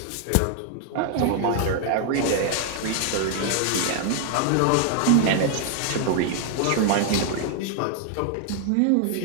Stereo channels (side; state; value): both; different; correlation 0.00